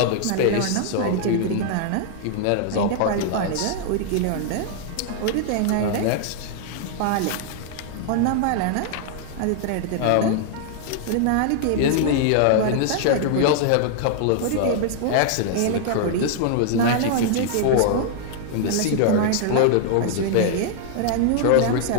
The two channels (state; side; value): different; both; correlation -0.01